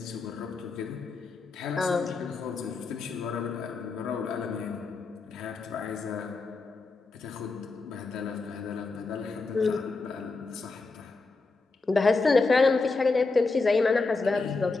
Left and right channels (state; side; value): quieter; right; 3.9 dB